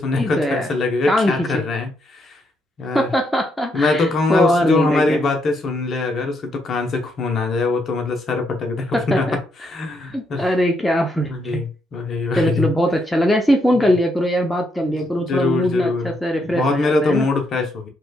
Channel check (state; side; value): normal; both; correlation 0.77